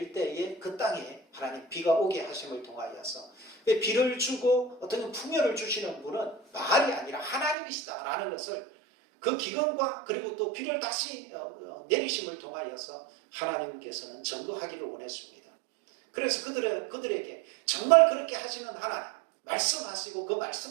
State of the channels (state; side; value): drops out; left; at 7.6 s